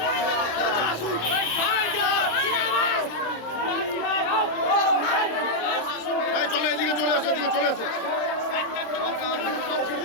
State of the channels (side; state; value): right; late; 27 ms